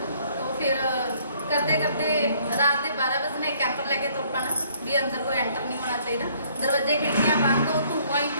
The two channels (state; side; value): inverted; both; correlation -0.62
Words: तो फिर करते करते रात के 12 बजे कैंपर लैके तुर पाना भी अंदर कोई एंटर नहीं होना चाहिए, दरवाजे खिड़कियां बंद, हो धुआं ही